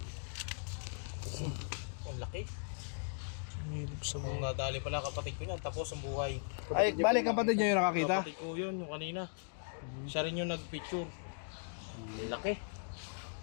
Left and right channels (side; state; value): right; silent; digital silence